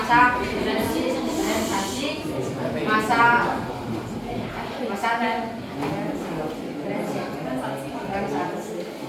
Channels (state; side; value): identical; both; correlation 1.00